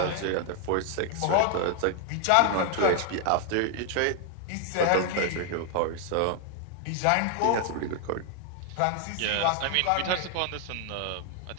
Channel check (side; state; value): both; different; correlation 0.00